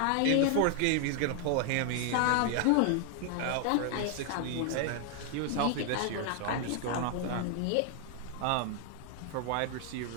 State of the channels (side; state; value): both; different; correlation 0.00